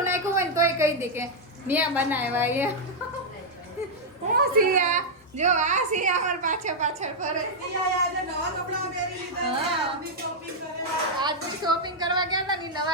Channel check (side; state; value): both; normal; correlation -0.04